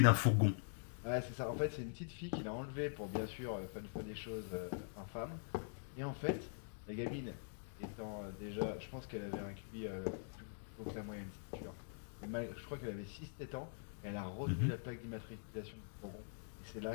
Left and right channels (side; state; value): right; silent; digital silence